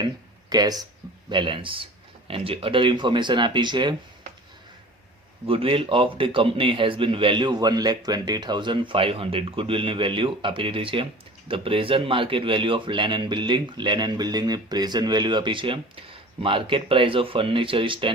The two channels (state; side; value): normal; both; correlation 0.41